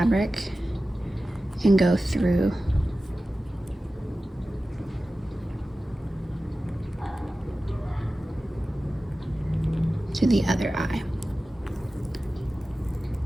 and go through to the other eye.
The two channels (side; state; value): both; normal; correlation 0.95